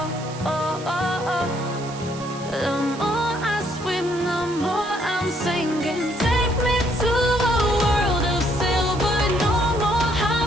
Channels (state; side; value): noise; right; hiss, 16 dB below the sound